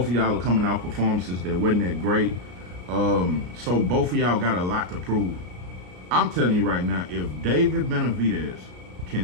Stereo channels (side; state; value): left; late; 33 ms